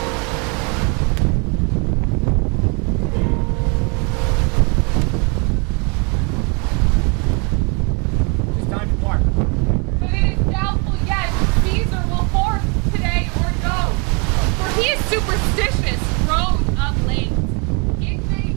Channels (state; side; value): quieter; left; 33.6 dB